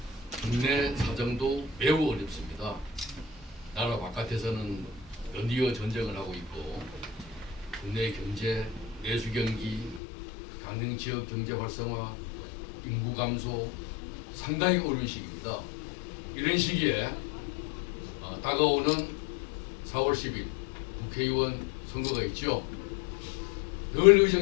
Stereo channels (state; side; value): drops out; right; at 10.0 s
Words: 국내 사정도 매우 어렵습니다. 나라 바깥에서는 연이어 전쟁을 하고 있고 국내 경제, 내수 경기, 강릉 지역 경제 활성화, 인구 감소 상당히 어려운 시기입니다. 이런 시기에 다가오는 4월 10일 국회의원 선거가 있죠. 늘